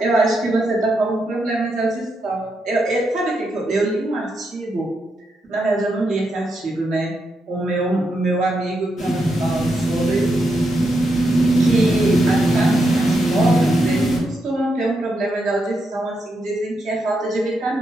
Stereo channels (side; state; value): both; normal; correlation 0.82